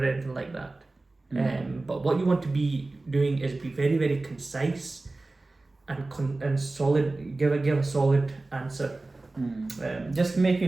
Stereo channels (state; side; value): quieter; left; 3.1 dB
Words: anything like that. But what you want to be doing is be very, very concise and solid. Give a solid answer. Just make